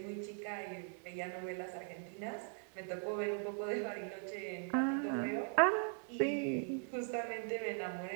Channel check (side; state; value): left; silent; 51 dB below the other